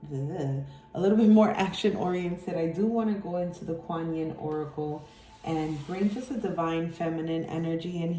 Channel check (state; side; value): identical; both; correlation 1.00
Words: little bit more action oriented, I do want to go into the Kuan Yin Oracle and bring just a divine feminine energy in